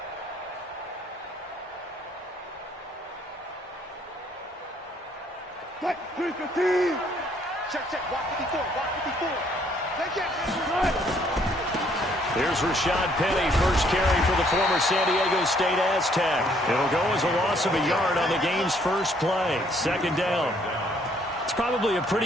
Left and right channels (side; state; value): both; normal; correlation 0.65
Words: Check. Walk 54. Take it. Here's Rashad Penny, first carry for the former San Diego State Aztec. It'll go as a loss of a yard on the game's first play. Second down. It's probably a